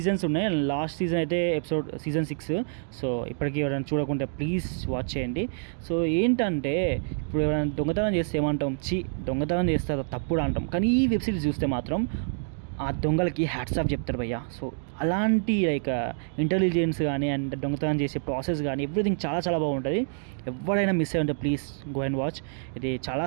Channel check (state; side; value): silent; left; digital silence